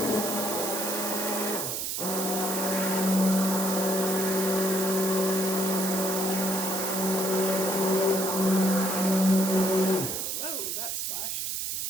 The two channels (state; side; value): noise; right; hiss, 2 dB below the sound